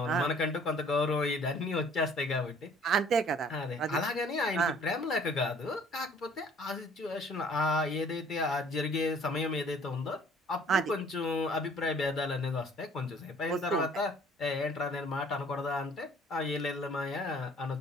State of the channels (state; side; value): normal; both; correlation 0.55